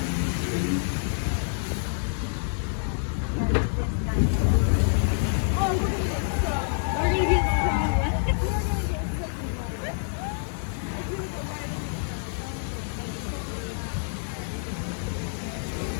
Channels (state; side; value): silent; right; digital silence